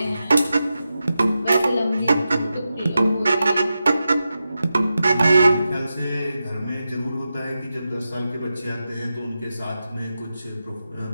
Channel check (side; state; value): both; inverted; correlation -0.91